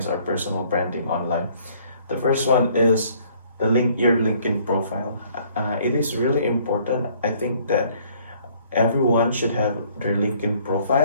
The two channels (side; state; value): both; inverted; correlation -0.60